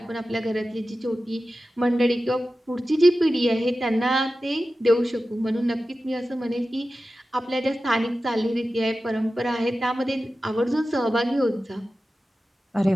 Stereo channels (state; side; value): normal; both; correlation 0.94